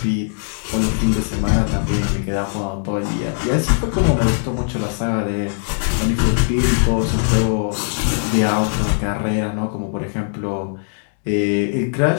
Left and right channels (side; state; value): right; silent; 64 dB below the other